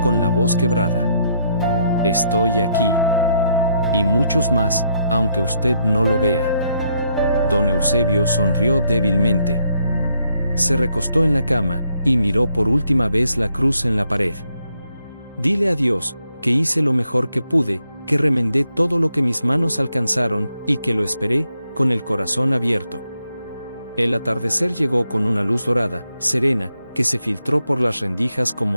con la voz quebrada. «Estoy aquí. Y muchos más, aunque usted no lo vea». Don Eusebio sonrió débilmente. Se recostó en la cama, y miró por última vez la cruz en la pared. Dile a Dios, que hice lo mejor que pude, que remendé todo lo que mis manos alcanzaron, y que lo esperé, con el corazón abierto. El atardecer llegó con una luz dorada, serena, que se filtró por las rendijas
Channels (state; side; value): inverted; both; correlation -0.76